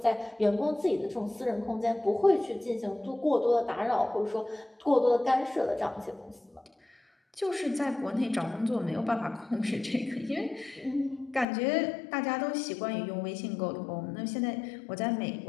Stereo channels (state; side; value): drops out; right; at 11.5 s